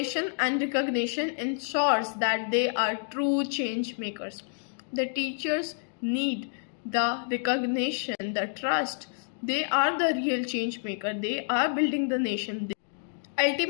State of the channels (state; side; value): silent; right; digital silence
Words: and recognition ensures that they are true change makers. The teachers need the recognition, the trust. They are the real change maker. They are building the nation.